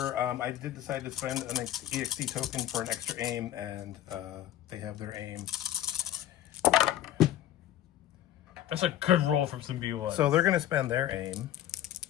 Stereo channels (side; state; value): right; quieter; 12.4 dB